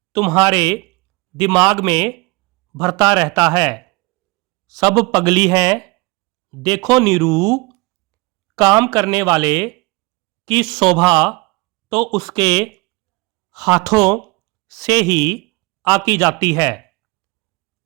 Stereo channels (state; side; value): quieter; left; 25.6 dB